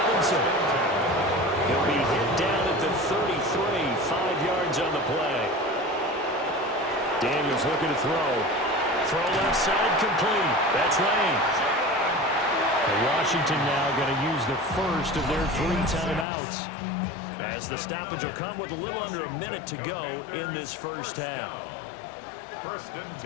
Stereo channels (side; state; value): right; drops out; at 16.2 s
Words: He'll be hit down at the 33, 5 yards on the play. Daniels looking to throw. Throw left side complete. That's Lane. Washington now going to use the first of their 3 timeouts, as the stoppage will come with a little under a minute to go in this first half. First and